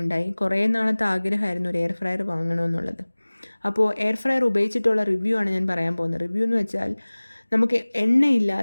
കുറേ നാളത്തെ ആഗ്രഹമായിരുന്നു ഒരു എയർ ഫ്രയർ വാങ്ങണമെന്നുള്ളത്. അപ്പോൾ എയർ ഫ്രയർ ഉപയോഗിച്ചിട്ടുള്ള റിവ്യൂ ആണ് ഞാൻ പറയാൻ പോകുന്നത്. റിവ്യൂ എന്ന് വെച്ചാൽ നമുക്ക്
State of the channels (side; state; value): both; inverted; correlation -1.00